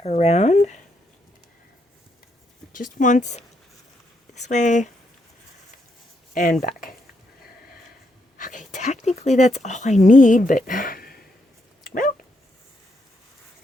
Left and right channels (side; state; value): both; normal; correlation 0.78